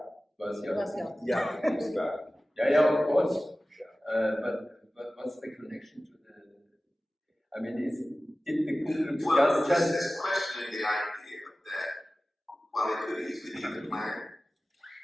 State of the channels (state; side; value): normal; both; correlation 0.96